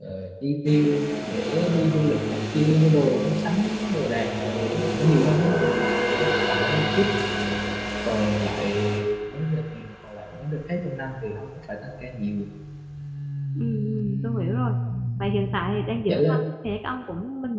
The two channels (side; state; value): both; identical; correlation 1.00